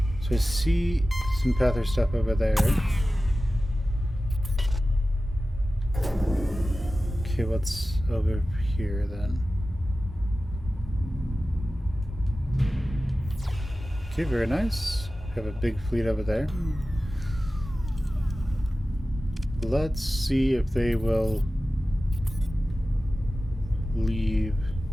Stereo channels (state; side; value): normal; both; correlation 0.95